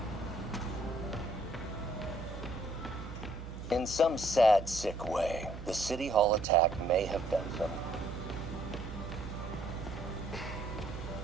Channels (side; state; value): right; noise; hum, 9 dB below the sound